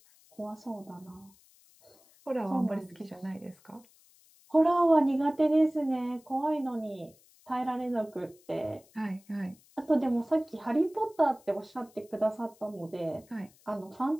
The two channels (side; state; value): left; noise; hiss, 29 dB below the sound